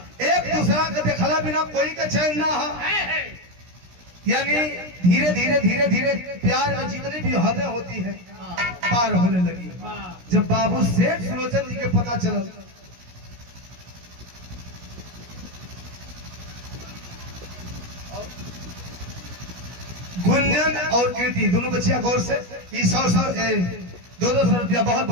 एक दूसरा के देखला बिना कोई का चैन ना है यानी धीरे धीरे धीरे धीरे प्यार में जितनी भी हदें होती है पार होने लगी। जब बाबू सेठ सुलोचन जी के पता चला गुंजन और कीर्ति दोनों बच्चियां गौर से 100-200 रुपया बहुत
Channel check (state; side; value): late; left; 16 ms